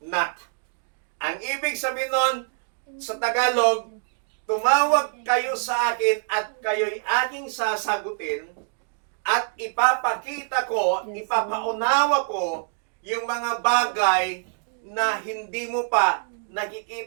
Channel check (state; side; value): silent; left; 62 dB below the other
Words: Ang ibig sabihin nun, sa Tagalog, tumawag kayo sa akin at kayo'y aking sasagutin at ipapakita ko, ipapaunawa ko yung mga bagay na hindi mo pa